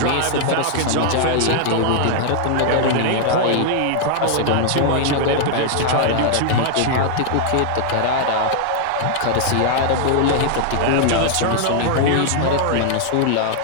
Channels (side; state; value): both; different; correlation -0.01